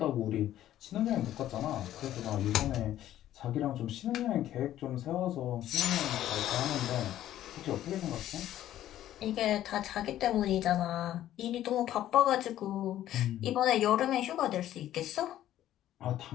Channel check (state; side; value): quieter; right; 12.6 dB